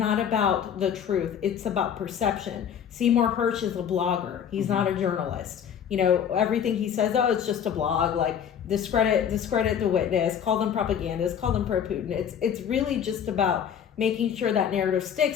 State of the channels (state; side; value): quieter; right; 8.5 dB